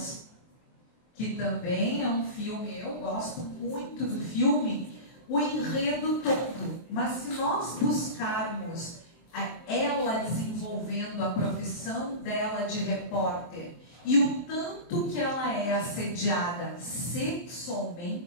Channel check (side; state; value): right; late; 23 ms